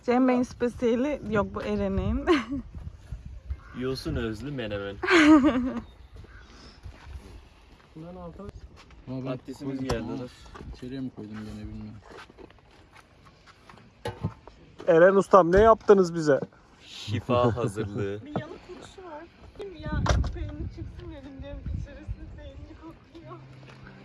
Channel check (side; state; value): both; identical; correlation 1.00